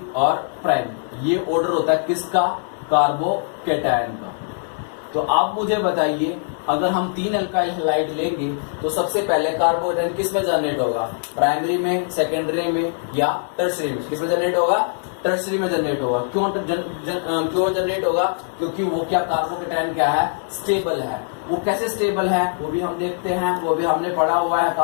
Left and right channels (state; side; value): silent; right; digital silence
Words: और प्राइमरी। ये ऑर्डर होता है किसका? कार्बोकैटायन का। तो आप मुझे बताइए, अगर हम 3 एल्काइल हैलाइड लेंगे तो सबसे पहले कार्बोकैटायन किस में जनरेट होगा? प्राइमरी में, सेकेंडरी में या टर्शरी में? किस में जनरेट होगा? टर्शरी में जनरेट होगा। क्यों जनरेट होगा? क्योंकि वो क्या, कार्बोकैटायन क्या है? स्टेबल है। वो कैसे स्टेबल है वो भी हम देखते हैं, वो भी हमने पढ़ा हुआ है